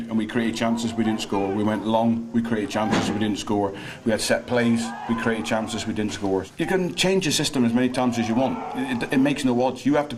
we created chances, we didn't score. We went long, we created chances, we didn't score. We had set plays, we created chances, we didn't score. You can change the system as many times as you want. It makes no odds. You have to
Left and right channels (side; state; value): both; identical; correlation 1.00